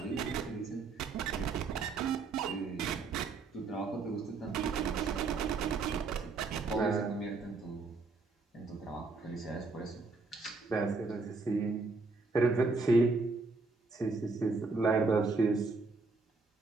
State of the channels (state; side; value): quieter; left; 4.0 dB